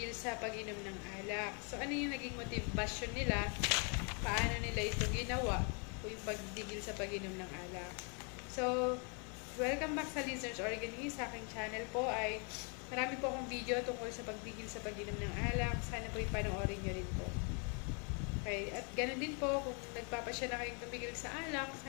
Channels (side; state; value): right; quieter; 37.4 dB